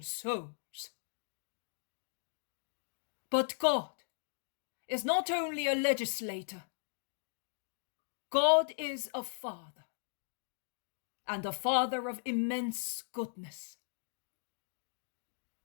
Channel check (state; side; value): silent; right; digital silence